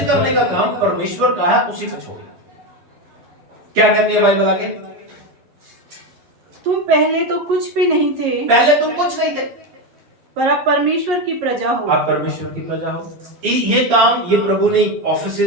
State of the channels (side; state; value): left; late; 11 ms